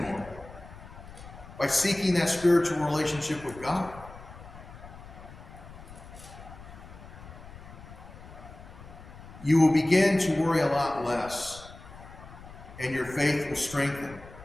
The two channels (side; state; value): left; noise; rumble, 16 dB below the sound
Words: by seeking that spiritual relationship with God. You will begin to worry a lot less, and your faith will strengthen,